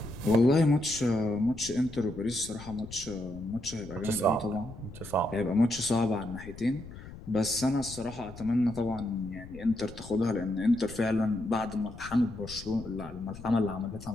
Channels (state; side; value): noise; left; rumble, 15 dB below the sound